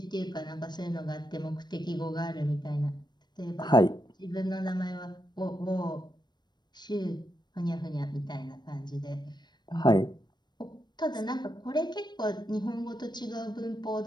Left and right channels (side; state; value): right; late; 0.21 ms